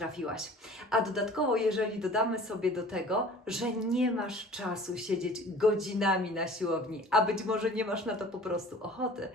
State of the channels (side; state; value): both; normal; correlation 0.46